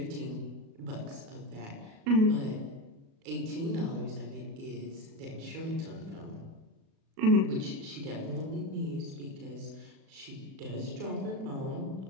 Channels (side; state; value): left; late; 37 ms